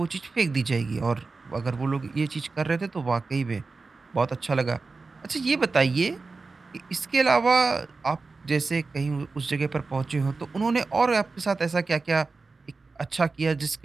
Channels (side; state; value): left; quieter; 4.0 dB